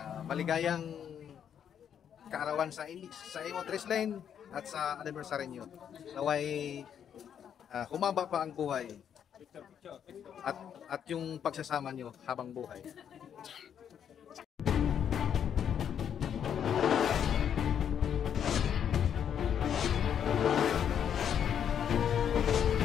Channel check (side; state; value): right; quieter; 8.6 dB